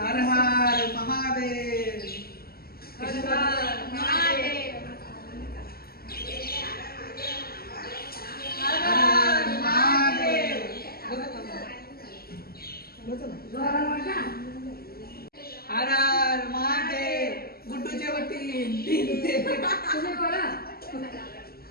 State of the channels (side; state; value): right; late; 0.45 ms